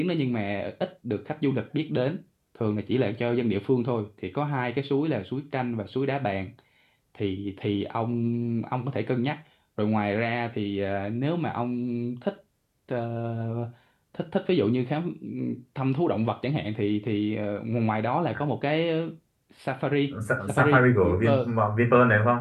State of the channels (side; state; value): both; identical; correlation 1.00